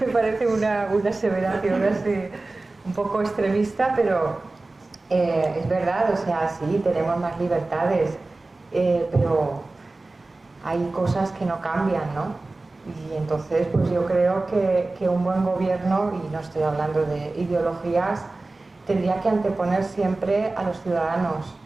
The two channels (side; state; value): left; quieter; 3.2 dB